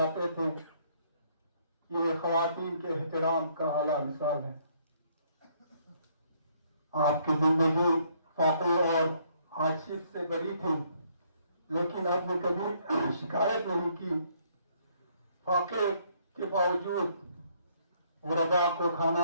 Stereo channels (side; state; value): both; inverted; correlation -0.67